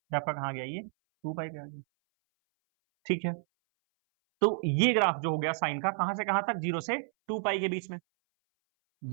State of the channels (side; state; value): left; silent; 57 dB below the other